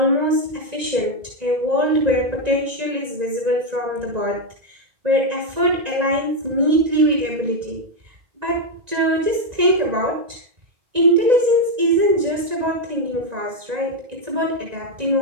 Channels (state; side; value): late; left; 1.9 ms